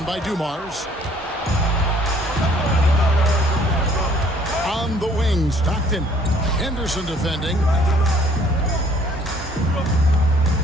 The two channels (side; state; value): both; normal; correlation 0.59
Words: by Dumars. On the wing, Stockton. Henderson defending.